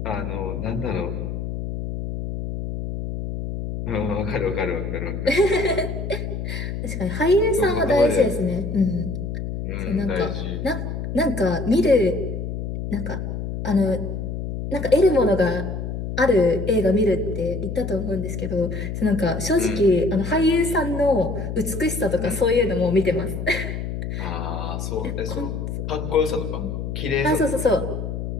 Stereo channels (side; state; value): left; noise; hum, 5 dB below the sound